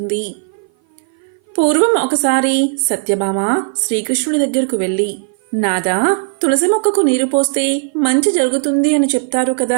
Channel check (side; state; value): left; silent; 57 dB below the other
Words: పూర్వం ఒకసారి సత్యభామ శ్రీకృష్ణుడి దగ్గరకు వెళ్ళి, నాదా, తులసి మొక్కకు నీరు పోస్తే మంచి జరుగుతుంది అని చెప్తారు